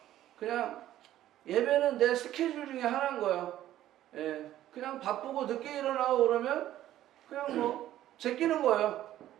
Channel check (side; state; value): left; quieter; 13.1 dB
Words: 그냥 예배는 내 스케줄 중에 하나인 거예요. 예, 그냥 바쁘고 늦게 일어나고 그러면 그냥 뭐 제끼는 거예요.